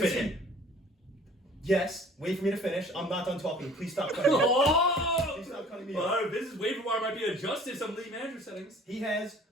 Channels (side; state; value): both; normal; correlation 0.51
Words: fit in. Yes, wait for me to finish. I'm not done talking. Please stop cutting me off. Oh! Please stop cutting me Well, off. this is waiver wire might be adjusted some league manager settings. He has